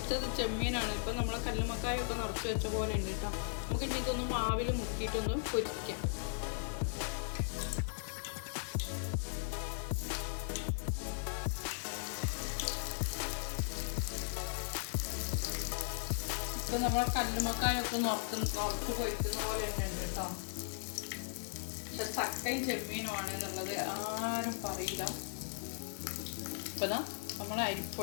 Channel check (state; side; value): silent; right; 53 dB below the other